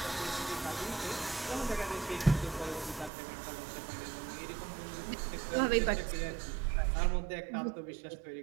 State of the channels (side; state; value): left; drops out; at 3.1 s